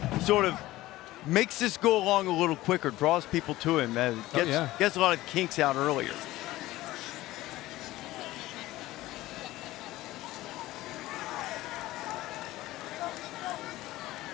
sort of makes this go along a little quicker, draws people to him, and gets a lot of kinks out earlier.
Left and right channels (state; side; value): quieter; right; 17.0 dB